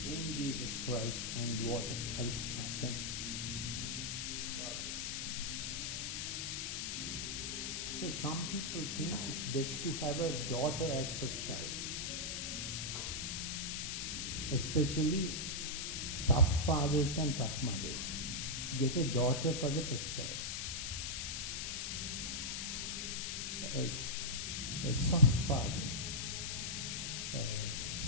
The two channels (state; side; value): noise; left; hiss, 2 dB below the sound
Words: in Jesus Christ. I need water. Thank you. God bless. So some people think it's best to have a daughter as first child, especially tough fathers and tough mothers. get a daughter for the first child.